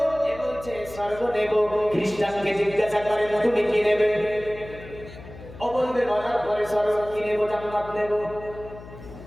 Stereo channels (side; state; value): left; noise; hum, 16 dB below the sound